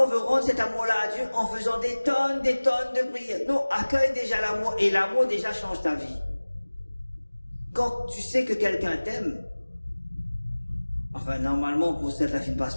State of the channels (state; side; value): inverted; both; correlation -1.00